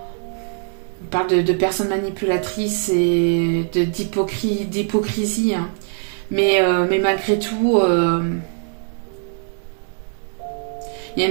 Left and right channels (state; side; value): silent; left; 65 dB below the other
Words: On parle de personnes manipulatrices et d'hypocrisie, hein. Mais malgré tout, il y a